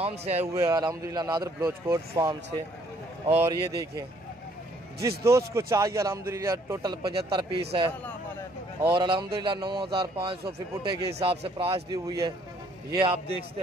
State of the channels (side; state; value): both; normal; correlation 0.64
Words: से आए हुए अल्हम्दुलिल्लाह नादर ब्लोच गोट फार्म से। और ये देखें जिस दोस्त को चाहिए अल्हम्दुलिल्लाह टोटल 75 पीस है और अल्हम्दुलिल्लाह 9500 फी पुठे के हिसाब से प्राइस दी हुई है। ये आप देखते